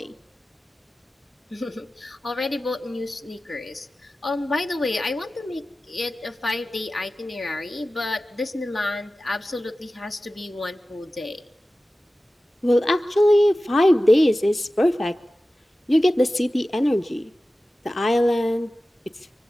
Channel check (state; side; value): normal; both; correlation 0.95